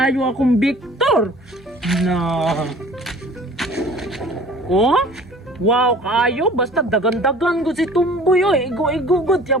ayo akong Victor. Na, oh? Wow, kayo, basta dagan-dagan ko si Tumboy, oy. Igo-igo god,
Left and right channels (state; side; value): normal; both; correlation 0.47